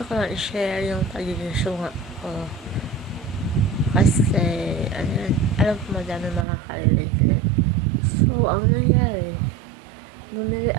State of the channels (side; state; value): left; drops out; at 6.5 s